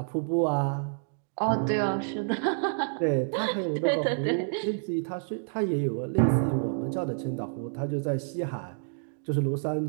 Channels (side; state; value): left; silent; digital silence